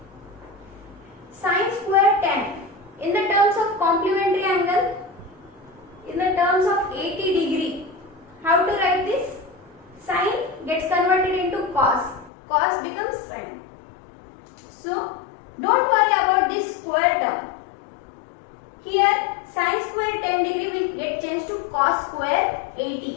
Sin square 10 in the terms of complementary angle, in the terms of 80 degree. How to write this? Sin gets converted into cos. Cos becomes sin. So don't worry about this square term. Here sin square 10 degree will get changed to cos square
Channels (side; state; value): right; drops out; at 12.3 s